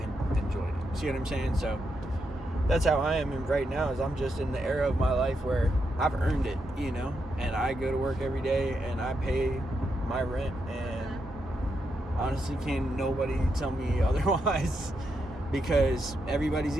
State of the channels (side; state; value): both; normal; correlation 0.83